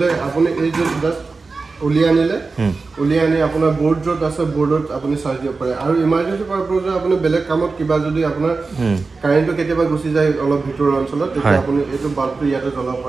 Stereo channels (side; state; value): left; quieter; 4.1 dB